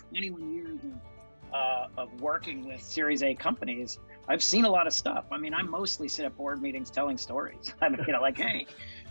years of working with Series A companies, I've seen a lot of stuff. I mean, I mostly sit at board meetings telling stories. I mean, like, hey,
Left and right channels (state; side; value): inverted; both; correlation -1.00